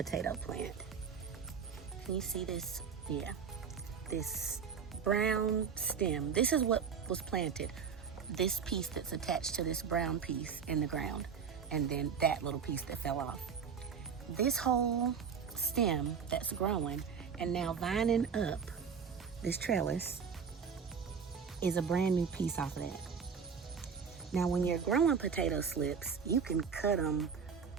plant, can you see this? Yeah. This brown stem, this is what was planted. This piece that's attached to this brown piece in the ground, and then that little piece that fell off. This whole stem that's growing and now vining up this trellis is a brand new piece off of that. Now when you're growing potato slips, you can cut them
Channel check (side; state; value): left; quieter; 6.4 dB